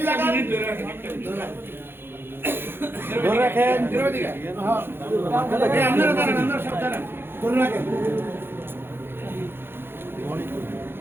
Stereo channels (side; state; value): left; late; 0.10 ms